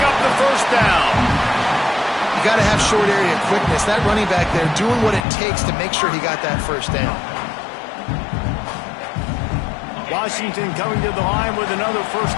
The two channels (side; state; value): right; drops out; at 5.2 s